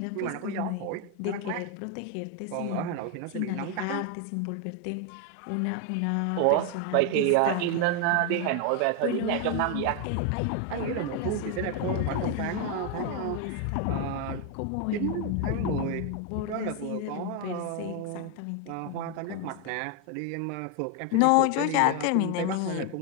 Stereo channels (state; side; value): different; both; correlation 0.01